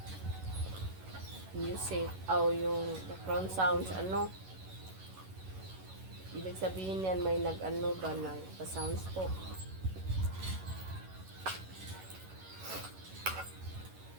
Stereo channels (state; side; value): late; left; 11 ms